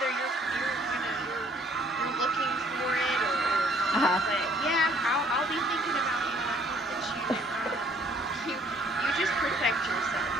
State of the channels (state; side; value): normal; both; correlation 0.61